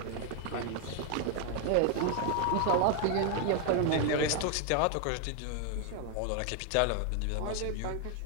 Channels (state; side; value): different; both; correlation 0.01